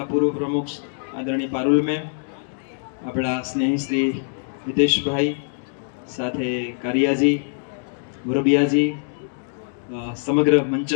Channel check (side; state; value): right; silent; digital silence